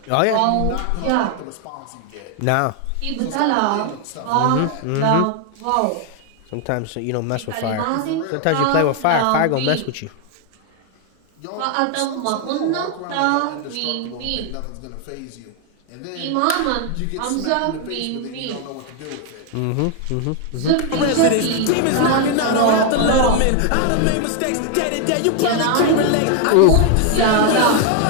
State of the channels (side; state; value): both; different; correlation 0.01